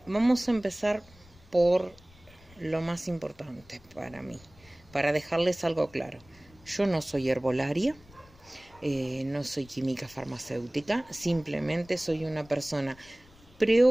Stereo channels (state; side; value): noise; left; rumble, 26 dB below the sound